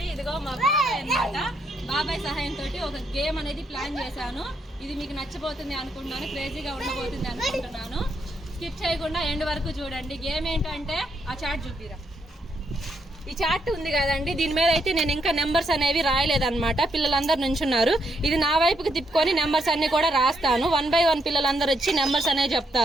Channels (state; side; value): normal; both; correlation 0.77